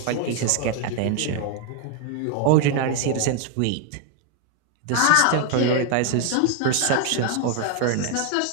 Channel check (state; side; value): different; both; correlation 0.00